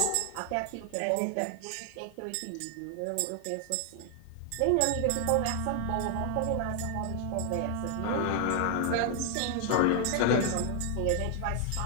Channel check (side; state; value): both; different; correlation 0.00